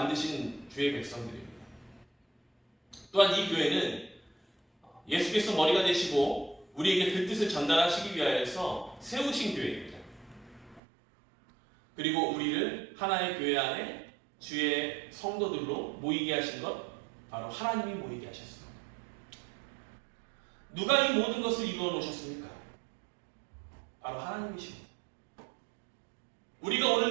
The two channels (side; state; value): left; drops out; at 10.8 s